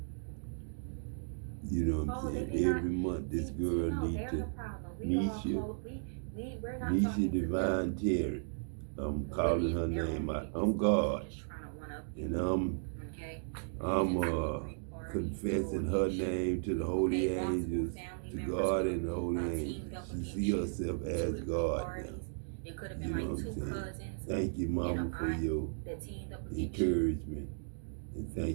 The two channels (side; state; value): left; silent; digital silence